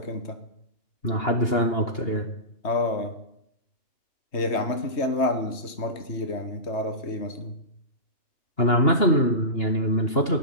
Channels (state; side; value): late; right; 2.8 ms